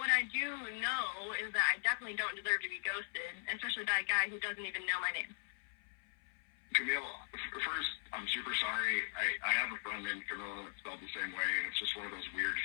I do know is that I definitely don't deserve to be ghosted, especially by a guy who doesn't even know my name. Camille, first, I'm super sorry. I have a friend named Camille that's spelled the same way, and it's just one of those weird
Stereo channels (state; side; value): silent; right; 52 dB below the other